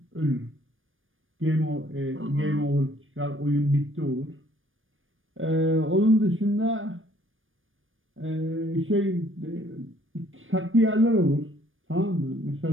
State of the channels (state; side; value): late; left; 0.59 ms